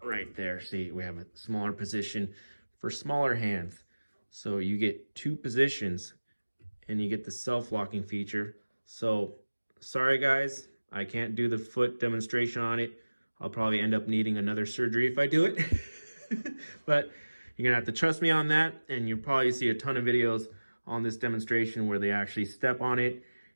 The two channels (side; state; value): both; inverted; correlation -1.00